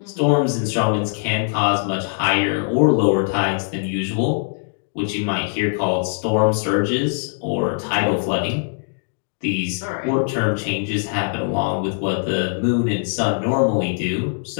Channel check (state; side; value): silent; right; digital silence